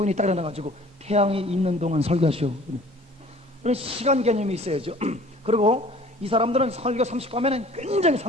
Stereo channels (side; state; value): both; normal; correlation 0.49